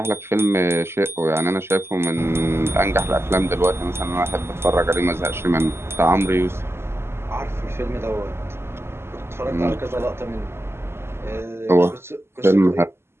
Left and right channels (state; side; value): late; left; 0.12 ms